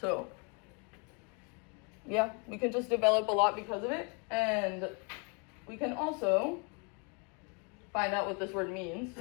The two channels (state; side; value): quieter; right; 34.8 dB